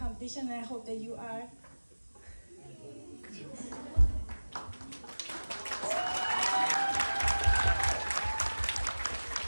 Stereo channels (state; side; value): inverted; both; correlation -1.00